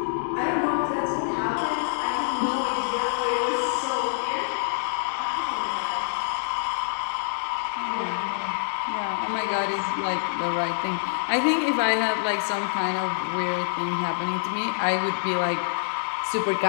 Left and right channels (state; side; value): silent; right; digital silence